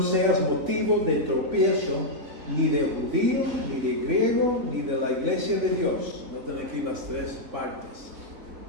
seas motivo de tropiezo ni de judío, ni de griego, ni de la iglesia de Dios. Noten aquí las tres partes.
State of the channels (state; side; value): late; left; 3.8 ms